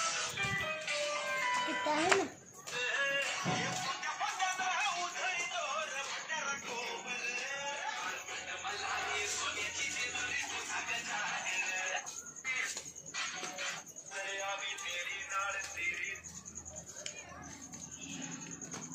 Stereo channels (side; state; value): both; identical; correlation 1.00